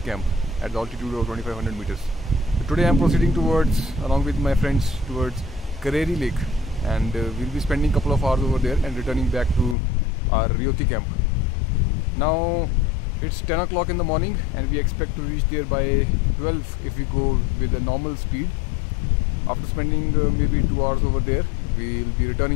camp at the altitude of 2500 meters. So today I am proceeding towards, along with my friends, towards Kareri Lake, and we'll be spending a couple of hours over there and returning back to our Ryoti camp. Now it's 10 o'clock in the morning and we expect to reach there by 12 if we go with a normal speed. After spending maybe 2 hours over there, we'll be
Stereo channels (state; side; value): drops out; right; at 9.8 s